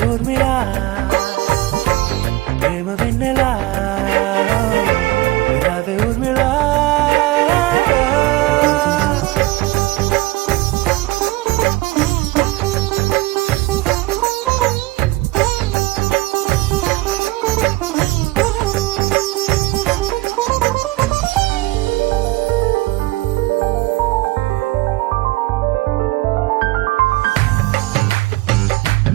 ఊర్మిళా ప్రేమ వెన్నెలా రావే ఊర్మిళా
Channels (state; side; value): quieter; left; 19.7 dB